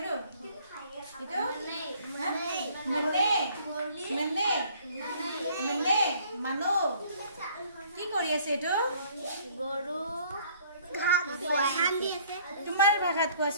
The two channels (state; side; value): inverted; both; correlation -0.58